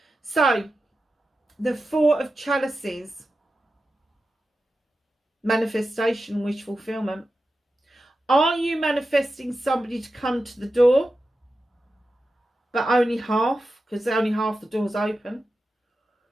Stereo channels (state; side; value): normal; both; correlation 0.91